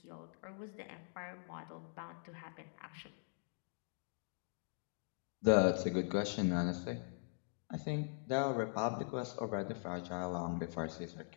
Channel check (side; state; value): right; silent; digital silence